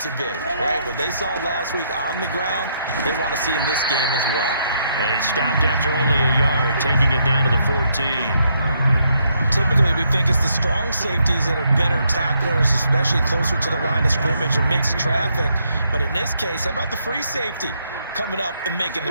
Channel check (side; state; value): both; inverted; correlation -0.75